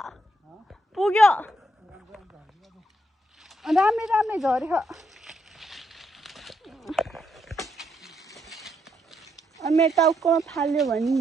पुग्यो राम्रै झऱ्यो। मेरो टाउकोमा फाल्यो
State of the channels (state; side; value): normal; both; correlation 0.77